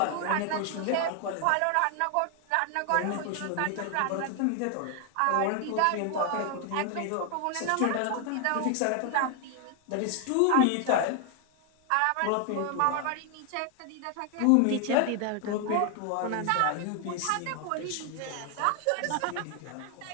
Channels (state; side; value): different; both; correlation 0.00